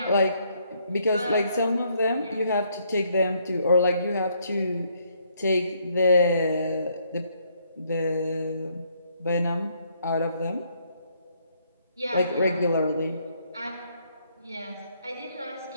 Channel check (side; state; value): both; inverted; correlation -0.70